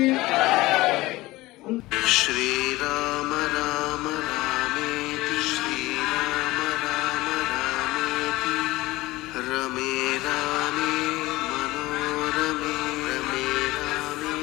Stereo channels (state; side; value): quieter; right; 19.2 dB